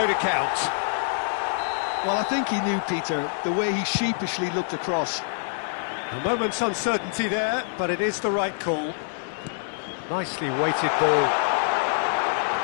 to count. Well, I think he knew, Peter, the way he sheepishly looked across. A moment's uncertainty there, but it is the right call. Nicely weighted ball.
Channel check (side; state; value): right; silent; 61 dB below the other